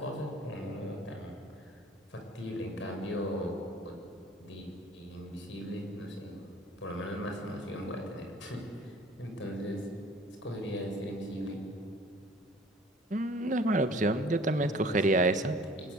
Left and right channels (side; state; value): both; normal; correlation 0.50